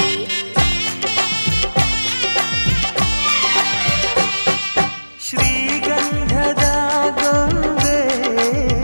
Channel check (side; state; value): both; inverted; correlation -1.00